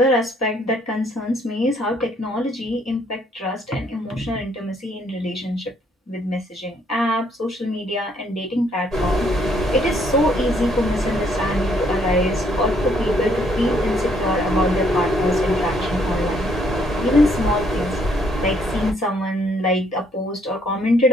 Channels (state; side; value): normal; both; correlation 0.68